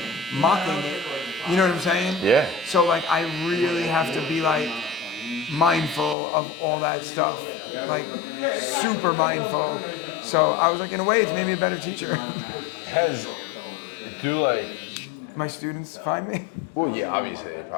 mocking it. You know what I'm saying? Yeah. So like I really have to be like mindful of all that stuff, like super mindful. So I was like, in a way, it's made me a better teacher. Has do like My students find me. well, yeah, obviously they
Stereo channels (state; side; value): drops out; right; at 6.2 s